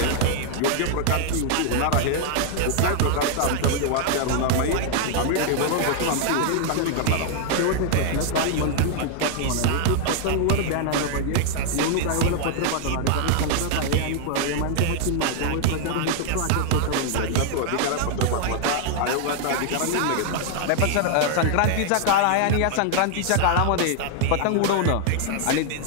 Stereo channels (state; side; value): different; both; correlation 0.00